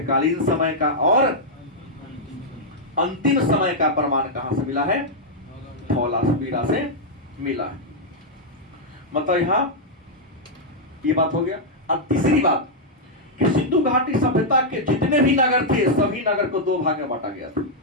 समय का और अंतिम समय का प्रमाण कहां से मिला है? धौलावीरा से मिला है। मतलब यहां ये बात हो गया। अब तीसरी बात कि सिंधु घाटी सभ्यता के जितने भी नगर थे, सभी नगर को दो भाग में बांटा गया था।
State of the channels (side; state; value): both; normal; correlation -0.05